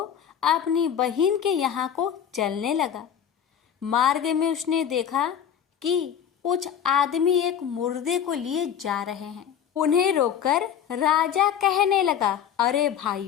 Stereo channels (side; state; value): right; quieter; 8.8 dB